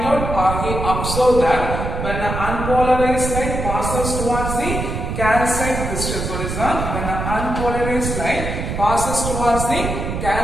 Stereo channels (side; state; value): right; noise; rumble, 4 dB below the sound